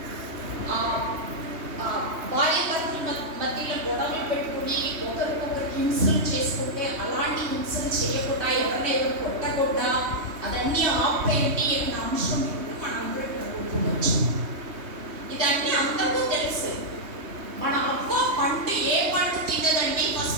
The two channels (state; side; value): late; left; 3.2 ms